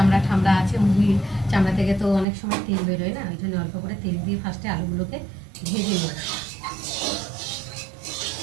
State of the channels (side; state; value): left; drops out; at 2.2 s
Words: ঠামড়া আছে, মুরগির চামড়া থেকে তো অনেক সময় তেল বেরোয় না, ওই জন্য অল্প করে তেল দিয়ে ফার্স্টে আলুগুলোকে ভেজে নেব।